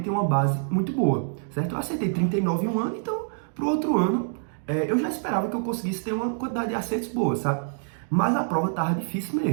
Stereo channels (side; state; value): left; silent; digital silence